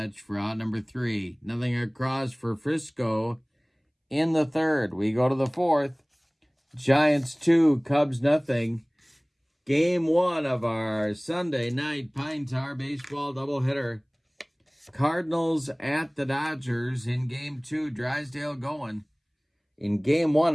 for out number 3. Nothing across for Frisco in the third. We go to the fourth. Giants 2, Cubs nothing. Game 1 of our Sunday night Pine Tar baseball doubleheader. Cardinals at the Dodgers in Game 2. Drysdale going. In Game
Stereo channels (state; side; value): identical; both; correlation 1.00